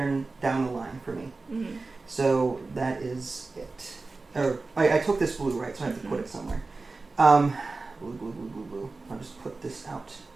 down the line for me. Mm-hmm. So that is it. Or I took this blue, right? So I have to put it somewhere. Blue, blue, blue, blue, blue. I'll just put this out.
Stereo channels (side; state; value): left; quieter; 3.7 dB